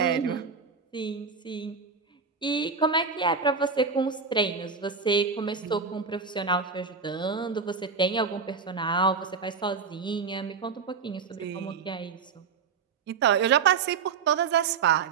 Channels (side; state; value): left; quieter; 5.4 dB